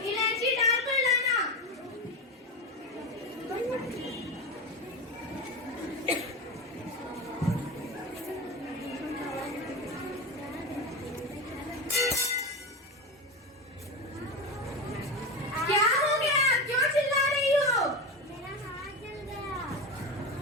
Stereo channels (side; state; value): both; normal; correlation 0.20